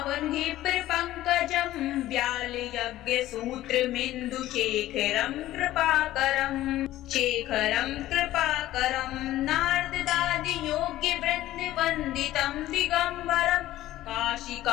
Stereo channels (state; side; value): quieter; right; 14.9 dB